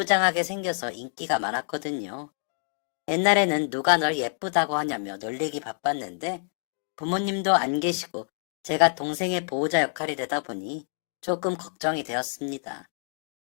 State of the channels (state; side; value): silent; right; 59 dB below the other